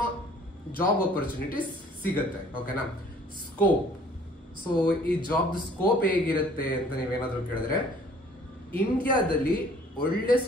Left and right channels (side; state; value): both; normal; correlation 0.55